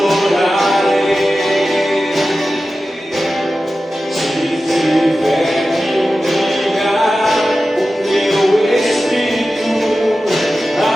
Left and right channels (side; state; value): both; normal; correlation 0.94